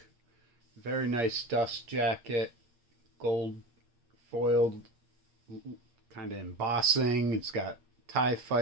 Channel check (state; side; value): late; left; 8.6 ms